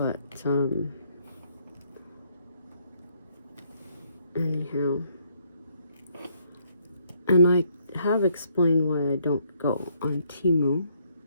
anyhow. And I have explained why I don't go on Temu.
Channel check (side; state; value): both; inverted; correlation -0.70